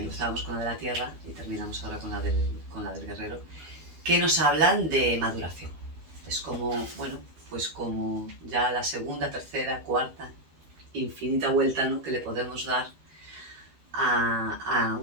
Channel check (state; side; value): late; left; 12 ms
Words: con la de la Tierra y terminamos ahora con la del Guerrero, que nos hablan de maduración. Es como, bueno, pues como ya la segunda, tercera, cuarta, infinita vuelta, ¿no?, que le podemos dar a